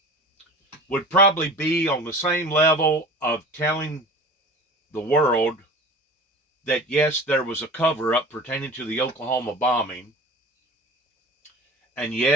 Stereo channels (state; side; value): normal; both; correlation 0.37